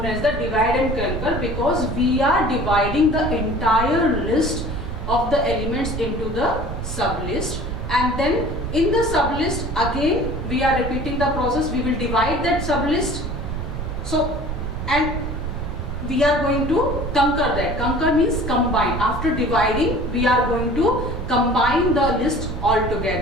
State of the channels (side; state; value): right; noise; rumble, 5 dB below the sound